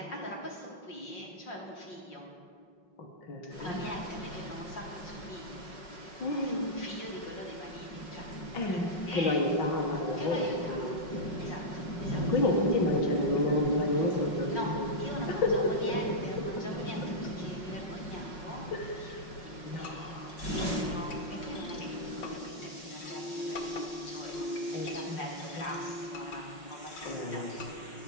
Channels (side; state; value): right; late; 5.5 ms